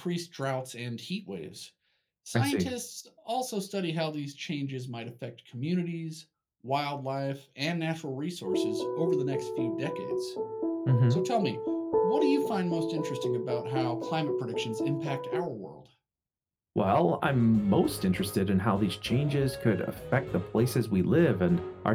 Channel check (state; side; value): identical; both; correlation 1.00